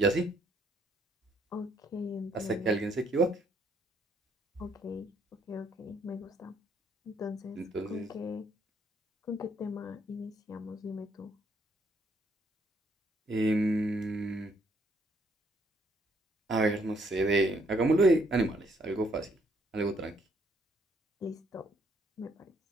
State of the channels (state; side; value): normal; both; correlation 0.69